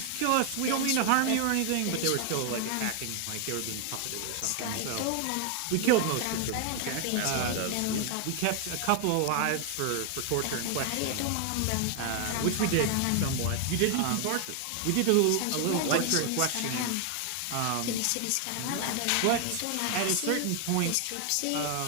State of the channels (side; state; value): both; different; correlation 0.00